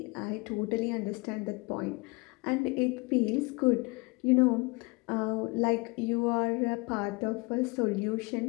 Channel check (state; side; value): quieter; right; 27.4 dB